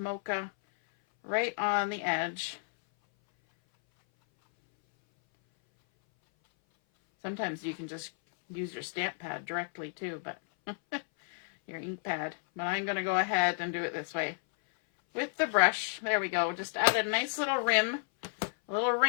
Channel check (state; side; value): silent; right; 57 dB below the other